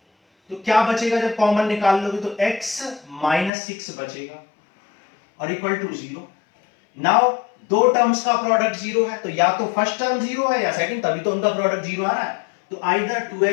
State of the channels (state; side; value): drops out; right; at 3.5 s